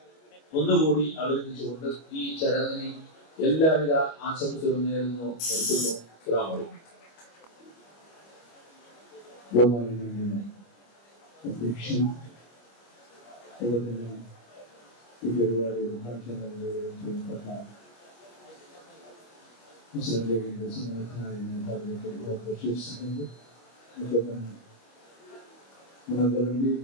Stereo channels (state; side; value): late; right; 25 ms